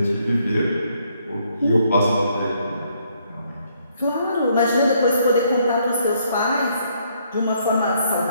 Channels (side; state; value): both; inverted; correlation -0.70